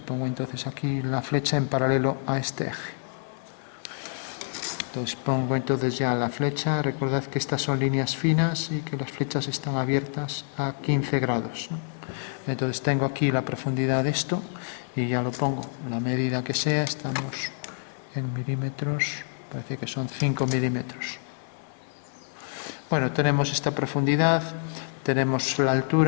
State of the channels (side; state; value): right; silent; digital silence